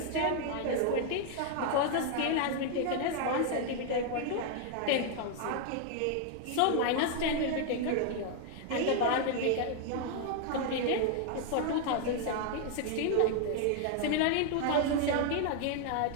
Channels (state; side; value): different; both; correlation 0.00